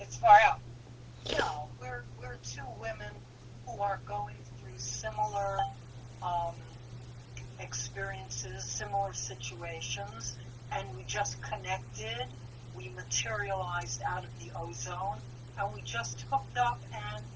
far out. We're two women who are going through similar experiences, similar situations, and we just connected. We materialized out of the ozone, and we just hooked up, and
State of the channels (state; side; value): identical; both; correlation 1.00